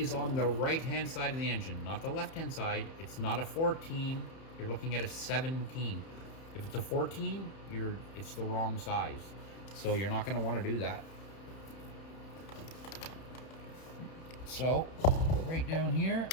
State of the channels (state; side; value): late; right; 31 ms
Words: on the right-hand side of the engine, not the left-hand side. It's not a 14. You're looking at a 17. If it's a 14, it's the wrong size. So you're not going to want to do that. So, right down here